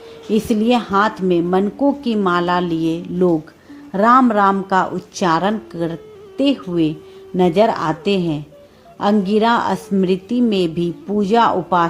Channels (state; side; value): identical; both; correlation 1.00